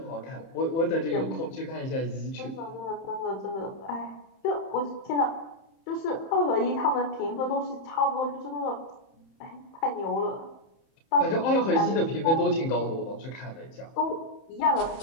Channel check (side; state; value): right; late; 31 ms